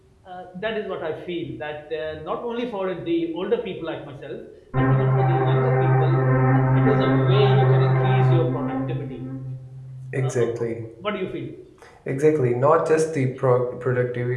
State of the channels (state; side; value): identical; both; correlation 1.00